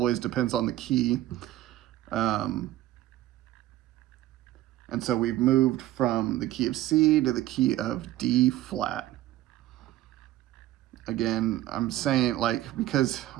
depends on the key. And so we've moved from the key of C to the key of D flat. Again, I'm saying like, because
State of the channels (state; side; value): quieter; left; 14.9 dB